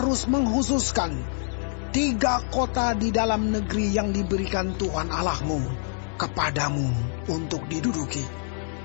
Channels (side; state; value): right; silent; digital silence